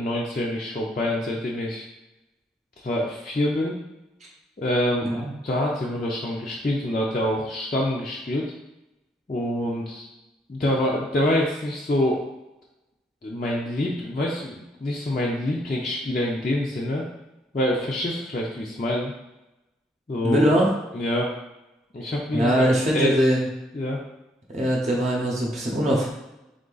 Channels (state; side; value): normal; both; correlation 0.69